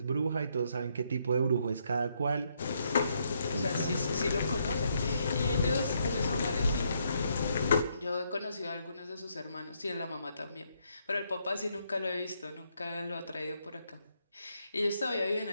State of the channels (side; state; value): both; inverted; correlation -0.75